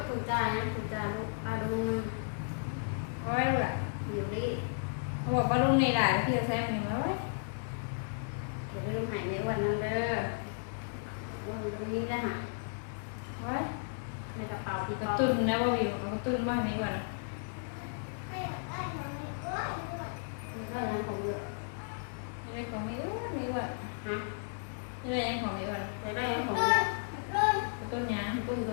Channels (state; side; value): silent; right; digital silence